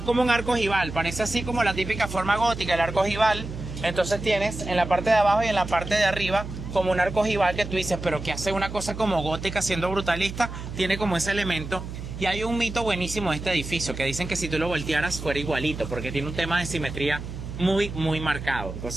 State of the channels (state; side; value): noise; right; hum, 9 dB below the sound